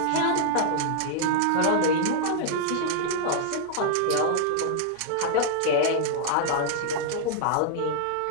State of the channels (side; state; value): both; different; correlation -0.01